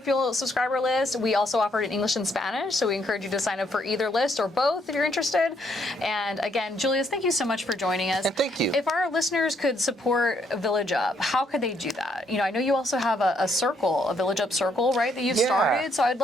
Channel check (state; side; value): normal; both; correlation 0.72